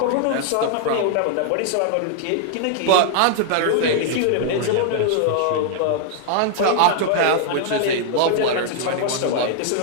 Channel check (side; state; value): both; different; correlation 0.00